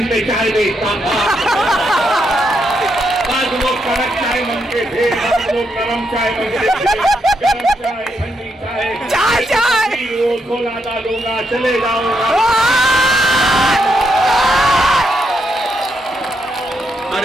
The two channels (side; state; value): both; normal; correlation 0.80